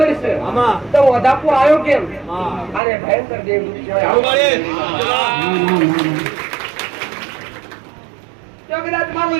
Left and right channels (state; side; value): drops out; left; at 2.8 s